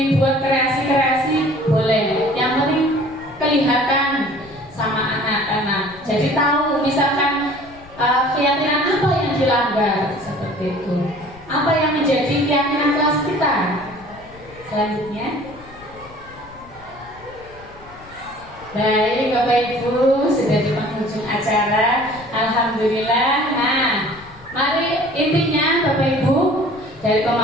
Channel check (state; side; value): noise; left; rumble, 22 dB below the sound